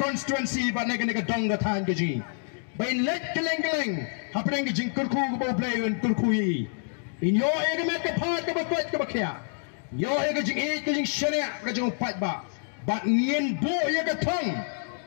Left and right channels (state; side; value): silent; right; 57 dB below the other